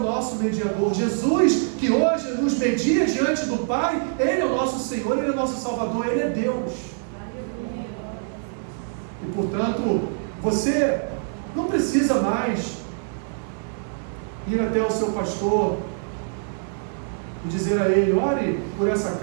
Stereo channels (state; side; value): silent; left; digital silence